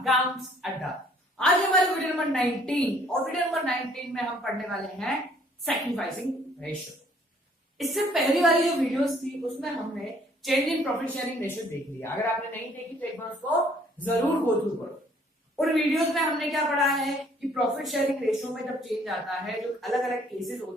Adda. आज हमारे video number 19 और video number 19 में हम पढ़ने वाले हैं सैक्रिफाइसिंग रेशियो। इससे पहली वाली जो वीडियोस थी उसमें हमने change in profit sharing ratio देख लिया। अगर आपने नहीं देखी तो एक बार उसको जरूर गो थ्रू करो। उन वीडियोस में हमने क्या पढ़ा है कि प्रॉफिट शेयरिंग रेशियो में जब चेंज आता है, जो अलग अलग केसेस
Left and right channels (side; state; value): both; normal; correlation 0.61